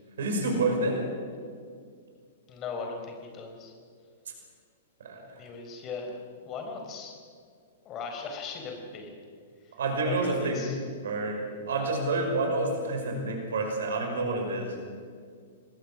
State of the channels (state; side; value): inverted; both; correlation -0.34